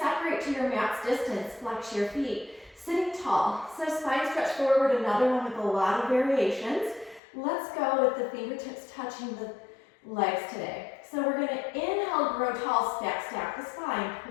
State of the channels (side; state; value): right; drops out; at 7.2 s